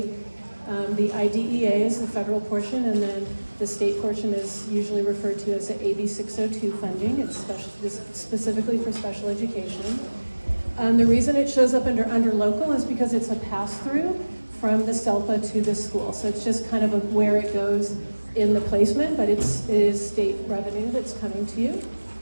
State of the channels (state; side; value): inverted; both; correlation -1.00